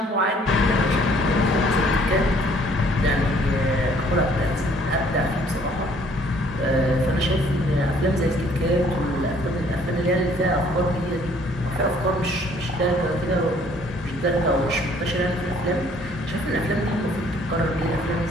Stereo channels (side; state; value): both; normal; correlation 0.60